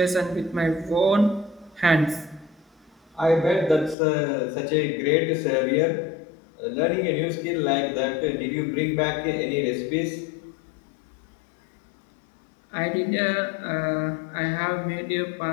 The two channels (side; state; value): right; drops out; at 4.0 s